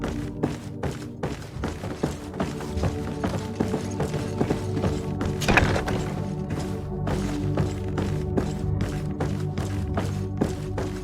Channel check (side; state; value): both; identical; correlation 1.00